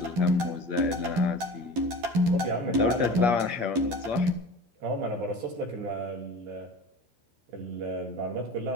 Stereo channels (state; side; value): late; left; 12 ms